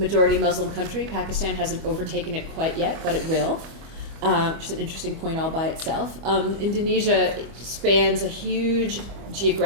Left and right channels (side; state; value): left; late; 25 ms